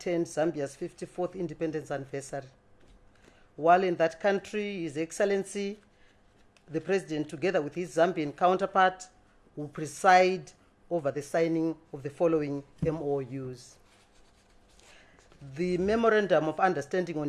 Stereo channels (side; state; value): both; identical; correlation 1.00